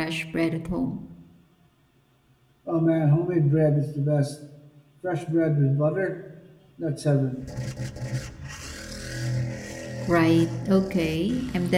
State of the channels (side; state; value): both; identical; correlation 1.00